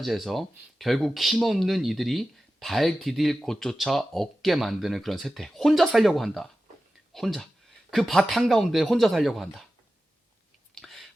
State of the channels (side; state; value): both; normal; correlation 0.94